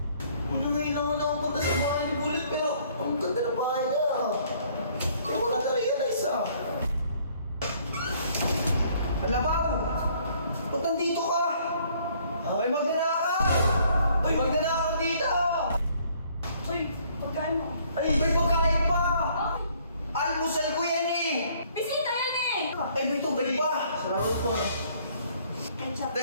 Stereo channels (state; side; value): inverted; both; correlation -0.62